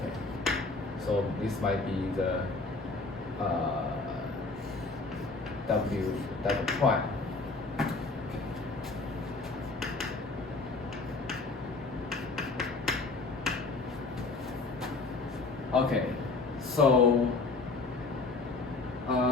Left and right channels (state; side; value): quieter; right; 3.7 dB